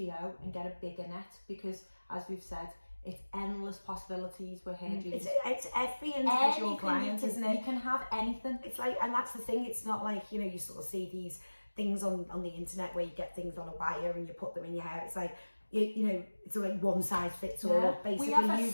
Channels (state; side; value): inverted; both; correlation -1.00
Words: and get a bigger net, because as we've said, it's endless possibilities with Hairdream. It's every individual client, isn't it? You can have anything. It's like, and that's the thing, it's not like, you know, you sort of see these things on the internet where you get things on a wire and you put them in your hair. It's like, you know, it's like one size fits all. Basically,